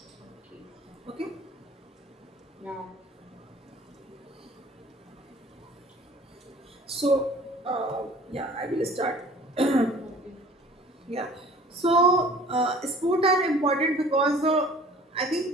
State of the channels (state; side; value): normal; both; correlation 0.49